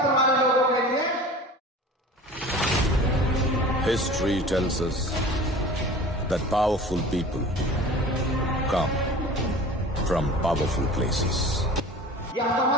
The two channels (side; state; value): both; normal; correlation 0.40